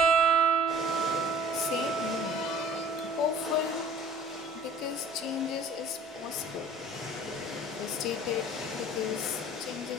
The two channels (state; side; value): normal; both; correlation 0.48